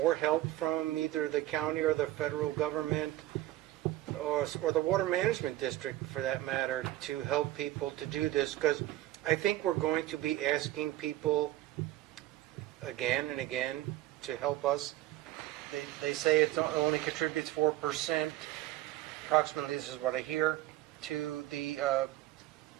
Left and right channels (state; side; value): quieter; left; 15.4 dB